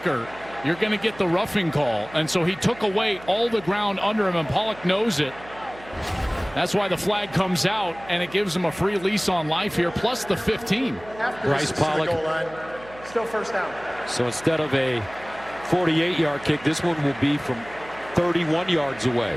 you're going to get the roughing call. And so he took away all the ground under him, and Pollock knows it. That's why the flag comes out, and it gives him a free lease on life here, plus the 15. Bryce Pollock. Still first down. So instead of a 48-yard kick, this one will be from 31 yards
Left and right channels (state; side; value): noise; right; hum, 19 dB below the sound